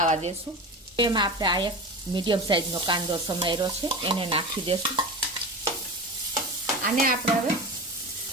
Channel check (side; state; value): both; normal; correlation 0.28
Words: દેશું. એમાં આપણે આ 1 મીડિયમ સાઈઝનો કાંદો સમાર્યો છે એને નાખી દેશું. આને આપણે હવે